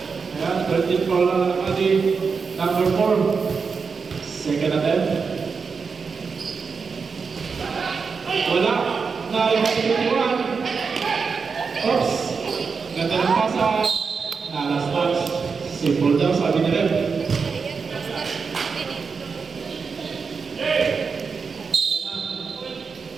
Ayan, 13 foul na Alamani. Number 4. Second attempt. Wala. Nariwan 21. Oops. Ganda ng pasa. Nalastas. Simple daw, sabi ni Rep.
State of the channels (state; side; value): quieter; left; 5.3 dB